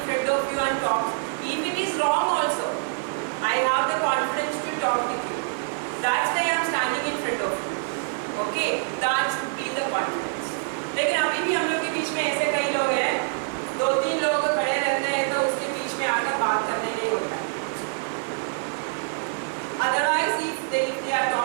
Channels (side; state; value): left; silent; digital silence